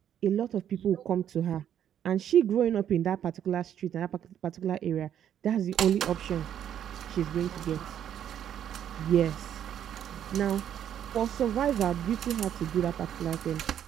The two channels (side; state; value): left; quieter; 9.9 dB